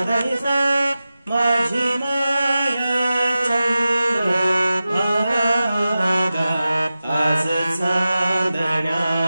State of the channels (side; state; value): both; inverted; correlation -0.94